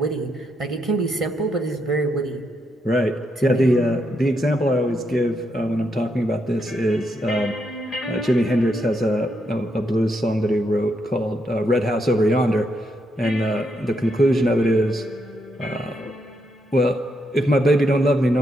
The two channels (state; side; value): normal; both; correlation 0.80